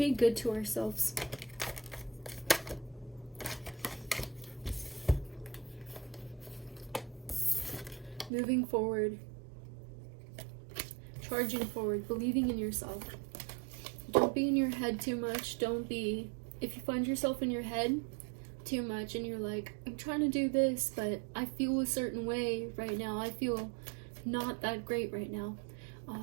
good to ourselves. Moving forward. Charging forward. Believing in yourself. Don't be in your head too much. If you find yourself in your head too much and you're like, I'm trying to do this, but I feel a certain way right now. I feel not that great right now.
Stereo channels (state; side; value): drops out; left; at 8.3 s